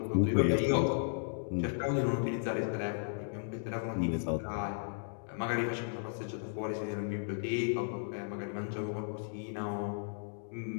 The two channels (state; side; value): silent; right; digital silence